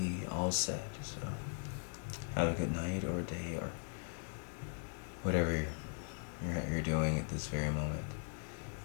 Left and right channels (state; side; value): silent; right; 51 dB below the other